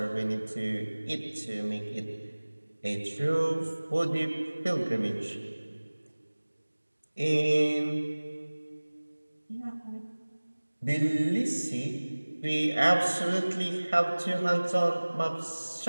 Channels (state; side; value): inverted; both; correlation -1.00